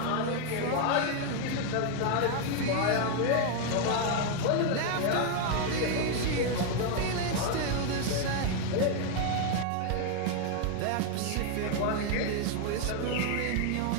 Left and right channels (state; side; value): different; both; correlation 0.01